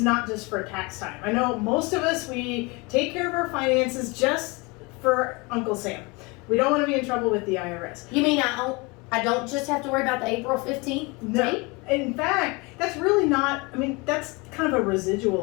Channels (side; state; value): right; quieter; 26.9 dB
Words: not just for tax time. I know most of us, we take care of our finances just for Uncle Sam. We don't want to be in trouble with the IRS. You mean I don't just have to worry about the April 15th date? In fact, that's really not, that's kind of a